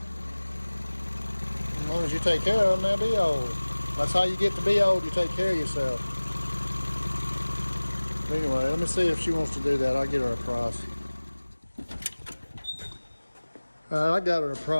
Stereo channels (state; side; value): inverted; both; correlation -1.00